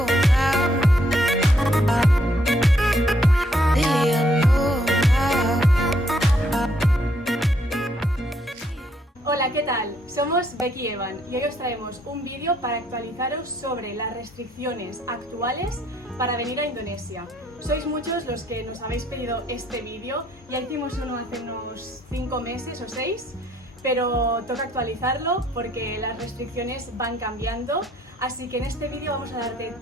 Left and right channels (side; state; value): both; normal; correlation 0.70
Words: now. See, I know now. Hola, ¿qué tal? Somos Becky y Evan y hoy os traemos un vídeo para actualizaros sobre las restricciones actuales para venir a Indonesia. Sois muchos los que nos habéis pedido este vídeo, ya hicimos uno hace unos 5 meses o 6, pero toca actualizarlo porque las restricciones van cambiando, así que en este vídeo vamos a darte